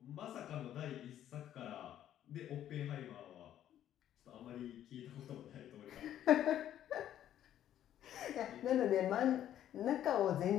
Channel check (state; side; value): quieter; right; 11.3 dB